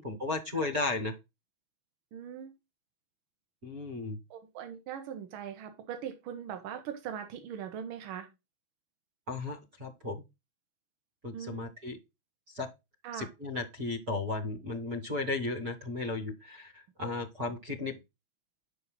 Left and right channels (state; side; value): late; left; 5.8 ms